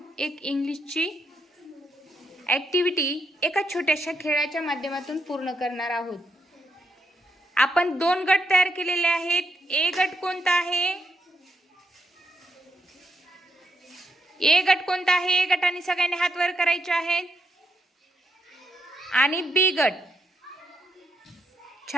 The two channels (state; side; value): normal; both; correlation 0.80